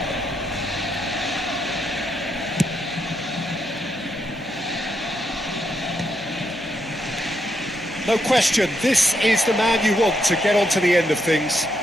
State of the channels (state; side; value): noise; right; hum, 19 dB below the sound